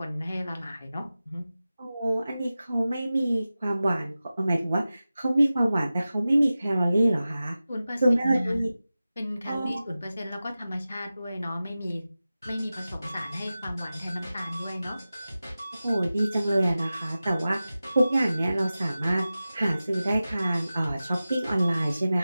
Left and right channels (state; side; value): inverted; both; correlation -0.95